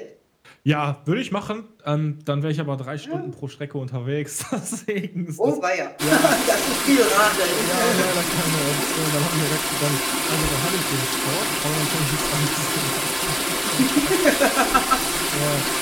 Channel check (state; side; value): identical; both; correlation 1.00